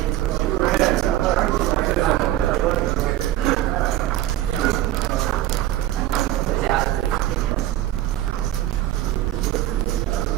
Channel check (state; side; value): quieter; left; 14.2 dB